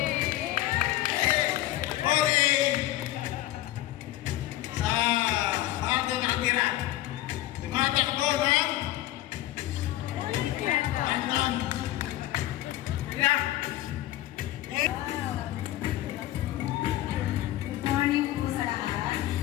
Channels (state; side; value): quieter; right; 15.3 dB